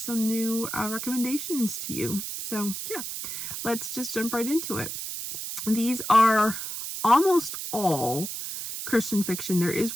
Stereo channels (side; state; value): right; noise; hiss, 6 dB below the sound